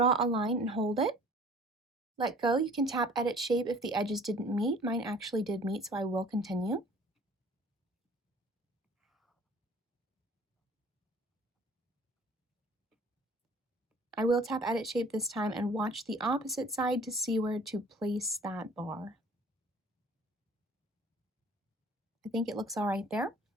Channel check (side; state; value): both; normal; correlation 0.50